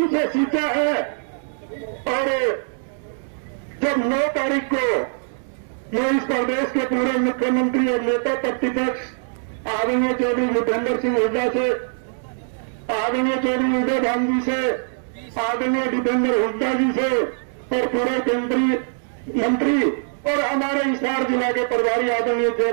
से सींचा है। और जब 9 तारीख को मैं इस प्रदेश के पूर्व मुख्यमंत्री और नेता प्रतिपक्ष आदरणीय चौधरी भूपेंद्र सिंह हुड्डा से, आदरणीय चौधरी उदय भाई जी से, आदरणीय भूपेंद्र हुड्डा जी से और पूरे केंद्रीय मंत्री और हमारे हिसार जिला के प्रभारी आदरणीय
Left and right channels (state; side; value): silent; left; digital silence